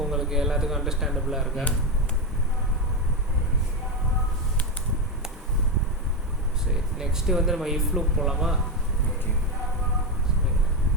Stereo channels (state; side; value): normal; both; correlation 0.11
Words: உங்களுக்கு எல்லாத்துக்கும் அண்டர்ஸ்டாண்டபிளாக இருக்கா? சரி, நெக்ஸ்ட்டு வந்து நம்ம இஃப் லூப் போகலாமா? ஓகே.